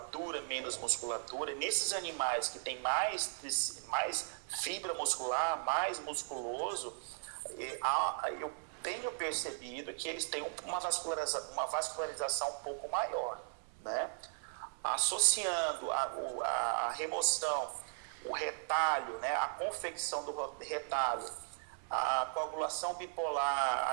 menos musculatura. Nesses animais que têm mais fibra muscular, mais musculoso, eu tenho percebido que eles têm uma vascularização um pouco maior, né? Associando a remoção, o retalho, né? A confecção do retalho, a coagulação bipolar,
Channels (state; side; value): silent; left; 53 dB below the other